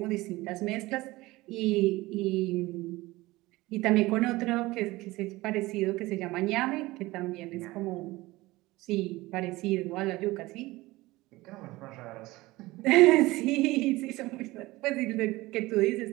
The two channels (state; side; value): quieter; left; 19.8 dB